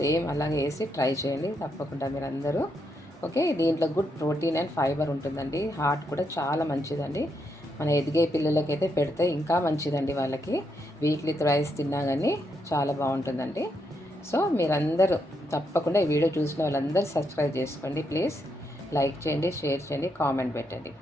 సేమ్ అలాగే వేసి ట్రై చేయండి తప్పకుండా మీరు అందరూ. ఓకే, దీంట్లో గుడ్ ప్రోటీన్ అండ్ ఫైబర్ ఉంటుందండి. హార్ట్ కూడా చాలా మంచిదండి. మన ఎదిగే పిల్లలకైతే పెడితే ఇంకా మంచిదండి. వాళ్ళకి వీక్లీ థ్రైస్ తిన్నా కానీ చాలా బాగుంటుందండి. సో మీరందరూ తప్పకుండా ఈ వీడియో చూసిన వాళ్ళందరూ సబ్స్క్రైబ్ చేసుకోండి ప్లీజ్. లైక్ చేయండి, షేర్ చేయండి, కామెంట్ పెట్టండి.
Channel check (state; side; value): normal; both; correlation 0.79